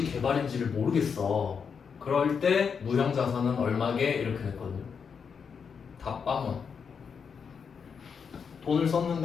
개발인지를 모르겠어. 그럴 때 무형 자산은 얼마게 이렇게 냈거든요. 다 빵원. 돈을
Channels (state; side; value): quieter; right; 6.3 dB